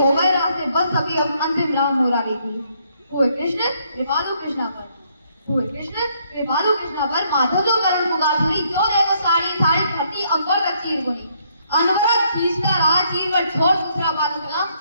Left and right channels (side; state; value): both; inverted; correlation -0.70